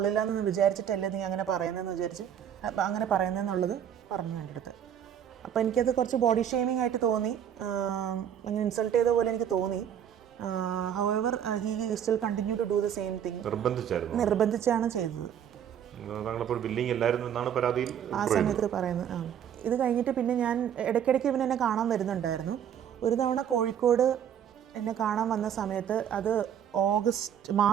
എന്ന് വിചാരിച്ചിട്ടല്ലേ നീ അങ്ങനെ പറയുന്നതെന്നുള്ളത് പറഞ്ഞു എൻ്റെ അടുത്ത്. അപ്പോൾ എനിക്കത് കുറച്ച് ബോഡി ഷെയ്മിങ് ആയിട്ട് തോന്നി, അങ്ങനെ ഇൻസൾട്ട് ചെയ്ത പോലെ എനിക്ക് തോന്നി. However he still continue to do the same thing. നിർബന്ധിച്ചാണ് ചെയ്തത്. ആ സമയത്ത് പറയുന്നത്. ഇത് കഴിഞ്ഞിട്ട് പിന്നെ ഞാൻ ഇടയ്ക്കിടയ്ക്ക് ഇവൻ എന്നെ കാണാൻ വരുന്നുണ്ടായിരുന്നു. ഒരു തവണ കോഴിക്കോട് എന്നെ കാണാൻ വന്ന സമയത്ത് അത്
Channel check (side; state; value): left; quieter; 9.3 dB